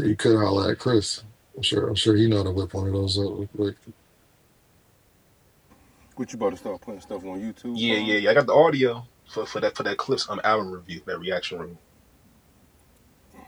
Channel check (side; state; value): both; identical; correlation 1.00